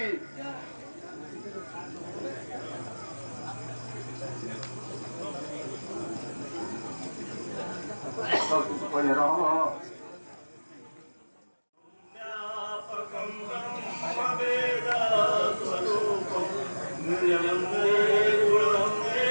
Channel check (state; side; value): inverted; both; correlation -1.00